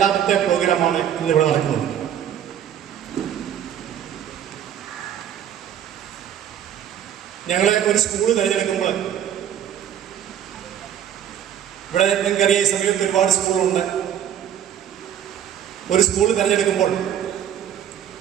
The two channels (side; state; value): left; quieter; 9.9 dB